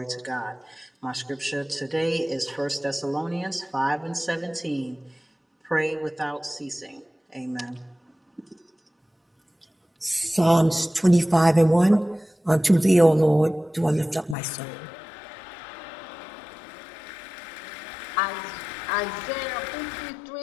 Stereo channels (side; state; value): right; drops out; at 14.4 s